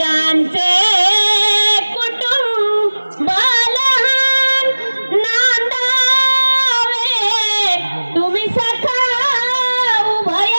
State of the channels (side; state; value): both; inverted; correlation -1.00